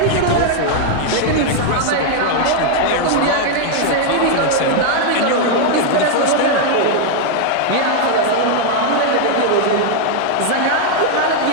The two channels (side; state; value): both; different; correlation 0.00